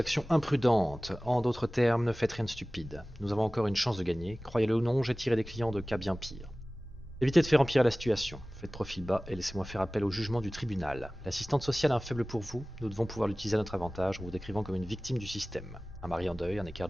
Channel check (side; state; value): both; normal; correlation 0.98